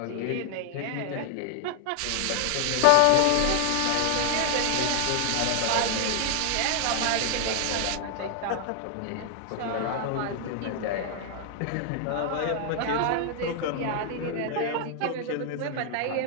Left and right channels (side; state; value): both; different; correlation 0.00